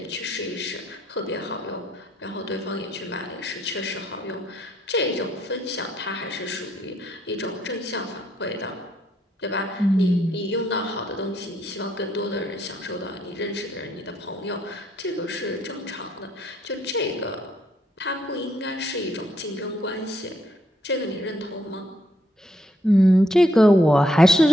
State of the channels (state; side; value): normal; both; correlation 0.72